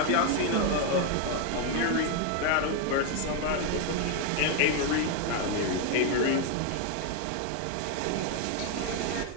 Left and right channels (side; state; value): both; different; correlation 0.01